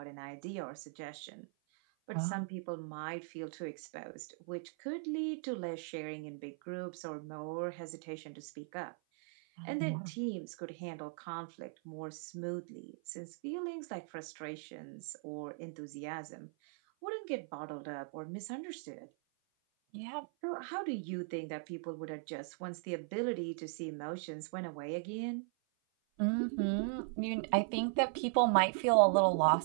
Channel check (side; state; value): left; silent; 52 dB below the other